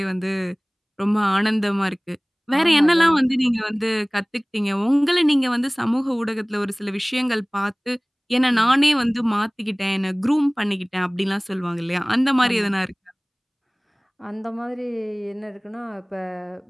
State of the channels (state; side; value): identical; both; correlation 1.00